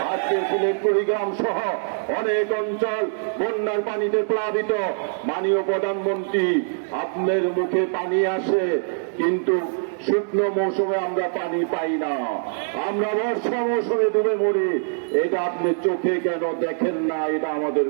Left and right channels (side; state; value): left; silent; digital silence